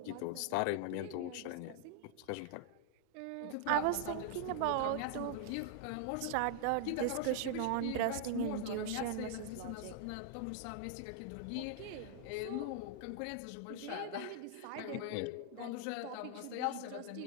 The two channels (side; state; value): both; different; correlation 0.00